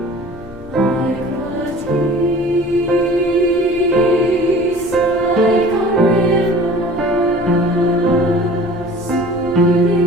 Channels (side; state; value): both; normal; correlation 0.44